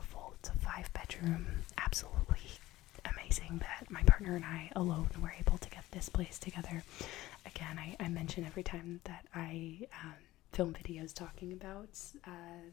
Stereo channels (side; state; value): right; quieter; 16.8 dB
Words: It's a 5-bedroom, absolutely amazing that my partner and I alone were able to get this place together. Again, I mention every time that I film videos talking about